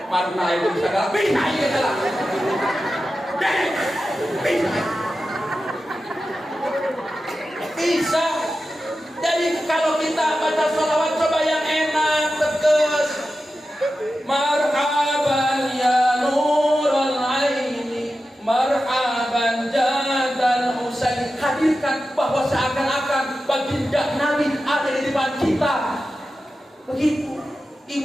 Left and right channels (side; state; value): both; normal; correlation 0.92